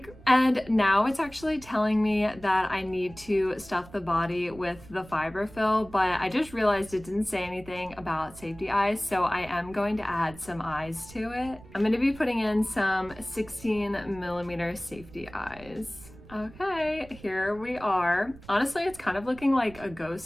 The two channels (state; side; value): noise; right; rumble, 20 dB below the sound